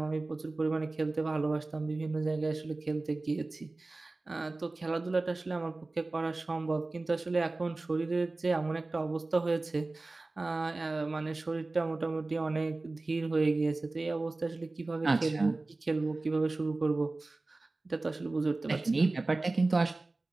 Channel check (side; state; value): left; quieter; 3.2 dB